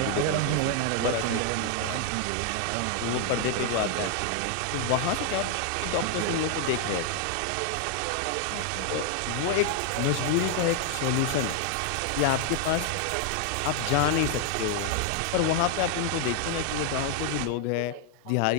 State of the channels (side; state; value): both; different; correlation 0.00